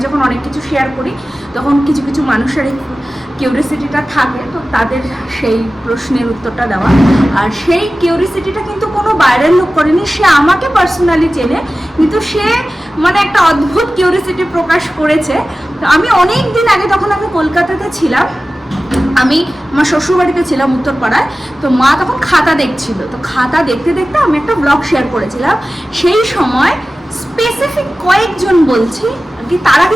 যখন অনেক কিছু শেয়ার করি তখন কিছু কিছু মানুষের এই কিউরিয়াসিটিটা থাকে, তো তাদের সেই প্রশ্নের উত্তরটা দেওয়া। আর সেই কিউরিয়াসিটিটা কিন্তু কোনো বাইরের লোক করেনি, সে আমাকে পার্সোনালি চেনে, কিন্তু সে মানে একটা অদ্ভুত কিউরিয়াসিটি প্রকাশ করেছে। তো আমি অনেক দিন আগে, তখন আমি কলকাতাতে ছিলাম, আমি আমার শ্বশুরবাড়িতে ছিলাম উত্তরপাড়ায়, তো মা তখন খাতা দেখছিল, তো খাতা দেখতে দেখতে আমি একটা ব্লগ শেয়ার করেছিলাম। সেই সময় স্পেসিফিক কয়েকজন বলছি কি, তারা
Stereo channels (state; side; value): normal; both; correlation 0.96